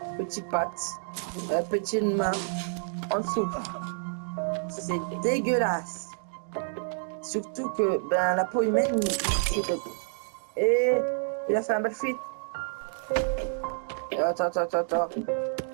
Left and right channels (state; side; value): silent; left; digital silence